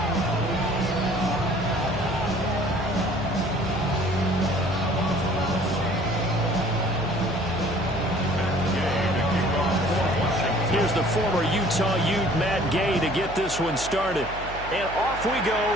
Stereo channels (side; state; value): right; noise; hum, 12 dB below the sound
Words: Here's the former Utah Ute, Matt Gay, to get this one started. And off we